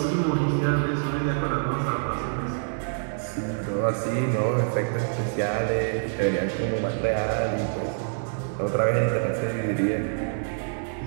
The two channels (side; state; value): left; silent; digital silence